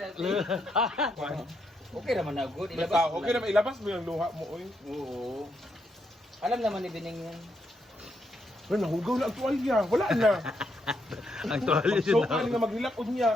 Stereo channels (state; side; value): normal; both; correlation 0.79